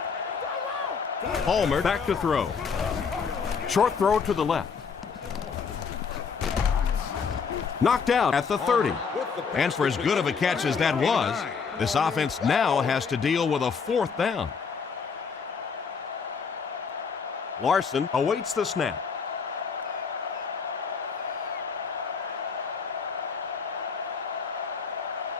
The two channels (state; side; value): quieter; right; 5.8 dB